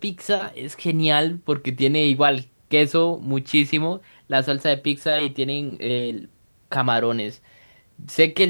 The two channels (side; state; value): both; inverted; correlation -1.00